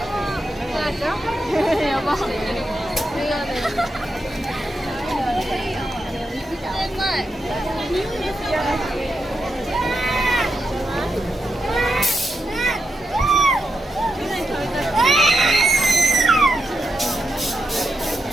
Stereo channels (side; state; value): both; normal; correlation 0.85